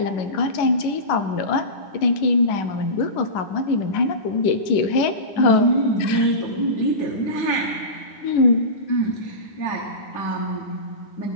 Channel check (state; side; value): late; right; 9.9 ms